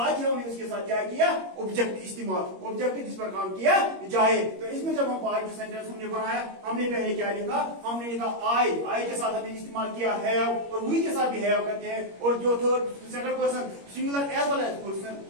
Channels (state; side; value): late; left; 21 ms